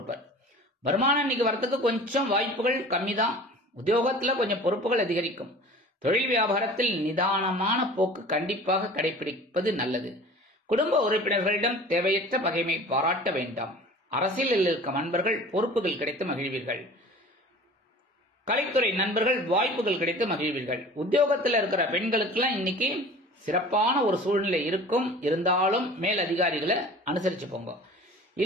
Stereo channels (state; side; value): normal; both; correlation 0.42